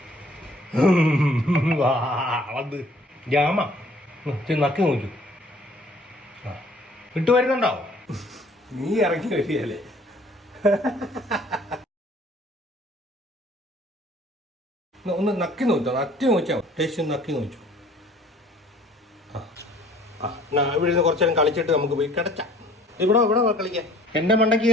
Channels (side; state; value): both; normal; correlation 0.55